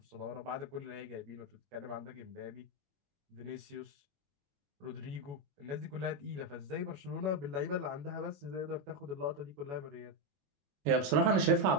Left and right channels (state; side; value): late; left; 21 ms